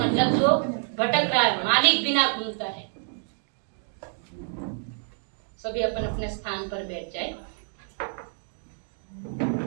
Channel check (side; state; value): left; silent; 60 dB below the other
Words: जो भटक रहा है, मालिक बिना घूमता है। सभी अपन अपने स्थान पर बैठ जाए।